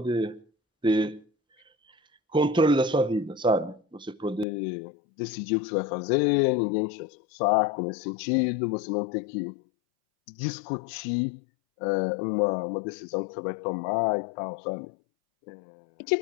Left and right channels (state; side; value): drops out; right; at 4.5 s